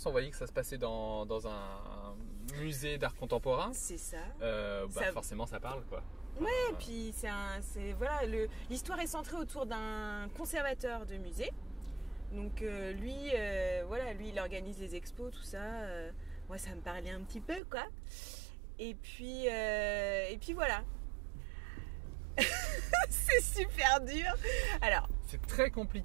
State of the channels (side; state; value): left; drops out; at 17.6 s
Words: on voyait que ça se passait dans un musée d'art contemporain. C'est ça. Forcément, ça parle, quoi. Ouais, puis voilà, l'histoire est centrée autour d'un conservateur de musée. Donc lui, il organise les expos, tout ça. Moi, ça me parlait un petit peu, quoi. Et puis voilà. C'est super dur. Alors, c'est très